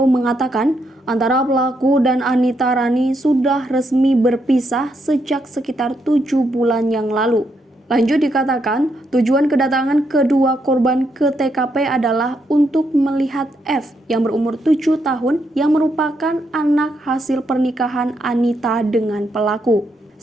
mengatakan antara pelaku dan Anita Rani sudah resmi berpisah sejak sekitar 7 bulan yang lalu. Lanjut dikatakan, tujuan kedatangan kedua korban ke TKP adalah untuk melihat F yang berumur 7 tahun yang merupakan anak hasil pernikahan Anita dengan pelaku.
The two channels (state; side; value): normal; both; correlation 0.78